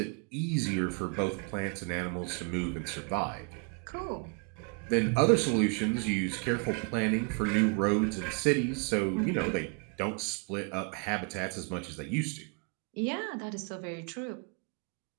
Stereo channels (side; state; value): left; quieter; 35.2 dB